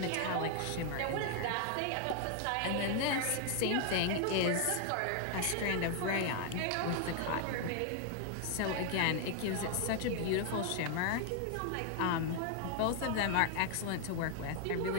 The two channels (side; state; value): both; different; correlation 0.00